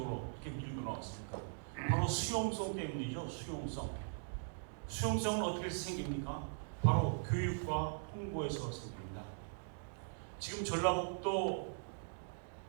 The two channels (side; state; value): left; silent; digital silence